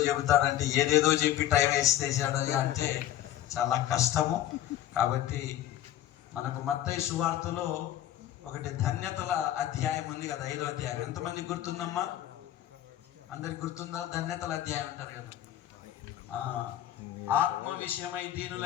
చెబుతాడంటే ఏదేదో చెప్పి టైం వేసేసాడు అంటే చాలా కష్టము. కాబట్టి మనకు మత్తయి సువార్తలో ఒకటి ధన్యతల అధ్యాయం ఉంది కదా, 5వ అధ్యాయం. ఎంతమంది గుర్తుందమ్మా? అందరికి గుర్తుందా? ధన్యతల అధ్యాయం అంటారు కదా. ఆత్మ విషయమై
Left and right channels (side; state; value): right; quieter; 12.5 dB